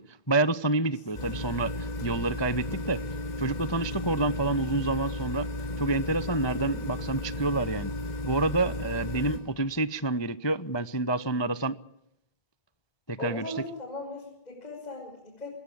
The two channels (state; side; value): late; right; 1.2 ms